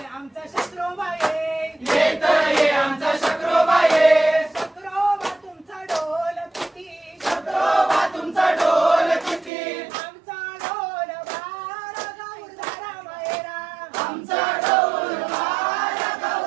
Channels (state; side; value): drops out; left; at 9.5 s